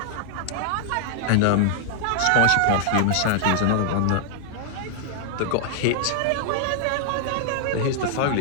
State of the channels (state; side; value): different; both; correlation -0.01